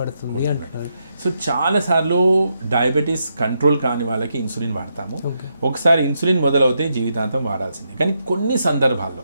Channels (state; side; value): inverted; both; correlation -0.81